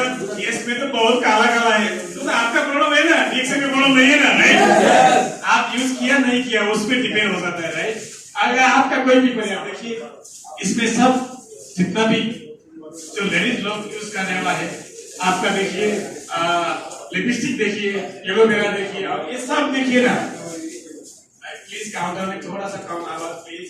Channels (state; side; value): identical; both; correlation 1.00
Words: केस में तो बहुत काला काला है, तो आपका प्रॉब्लम है ना, ठीक से प्रॉब्लम नहीं है ना, राइट? आप यूज किया नहीं किया उस पर डिपेंड हो जाता है, राइट? अगर आपका कोई भी परिणाम देखिए, इसमें सब जितना भी जो लेडीज लोग यूज करने वाला है, आपका देखिए लिपस्टिक देखिए, एलोवेरा देखिए, और ये सब देखिए ना। प्लीज काउंटर में थोड़ा सा कम आवाज प्लीज।